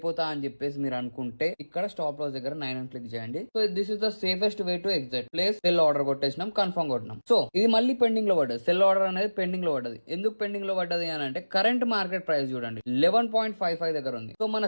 అని చెప్పేసి మీరు అనుకుంటే ఇక్కడ స్టాప్ లాస్ దగ్గర 9 అని క్లిక్ చేయండి. So this is the safest way to exit. Place sell order కొట్టేసినాం, కన్ఫర్మ్ కొట్టినాం. సో ఇది మళ్ళీ పెండింగ్ లో పడ్డది, సెల్ ఆర్డర్ అనేది పెండింగ్ లో పడ్డది. ఎందుకు పెండింగ్ లో పడ్డది అని అంటే కరెంట్ మార్కెట్ ప్రైస్ చూడండి 11.55 దగ్గర ఉంది. సో మన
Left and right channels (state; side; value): inverted; both; correlation -1.00